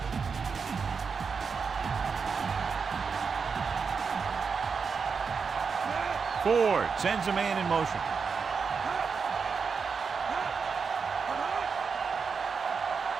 Ford sends a man in motion.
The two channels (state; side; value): quieter; left; 5.6 dB